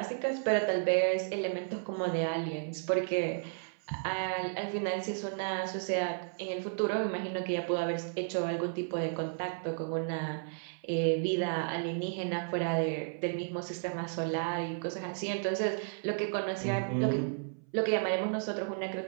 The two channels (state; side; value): silent; left; 56 dB below the other